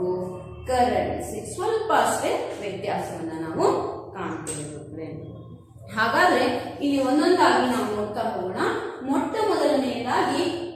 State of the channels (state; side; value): identical; both; correlation 1.00